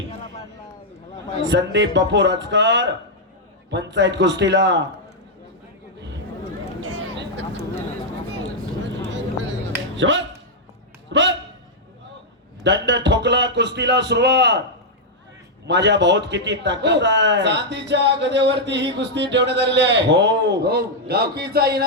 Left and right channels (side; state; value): both; normal; correlation -0.04